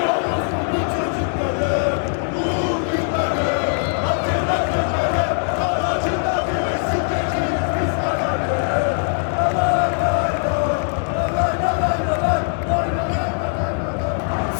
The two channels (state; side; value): silent; right; 59 dB below the other